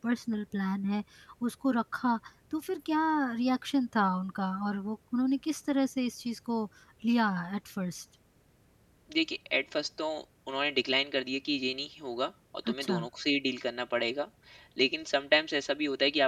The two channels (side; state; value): both; identical; correlation 1.00